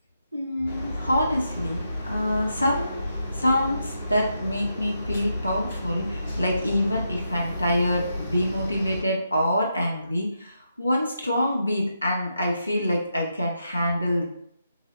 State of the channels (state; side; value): inverted; both; correlation -0.83